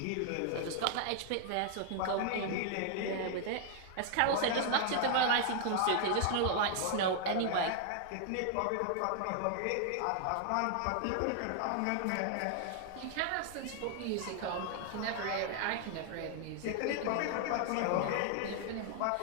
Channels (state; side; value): different; both; correlation 0.00